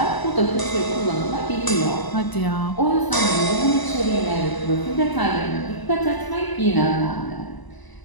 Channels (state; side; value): late; right; 1.0 ms